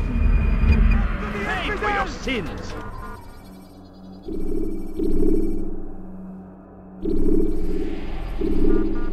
Pay for your sins!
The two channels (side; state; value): both; identical; correlation 1.00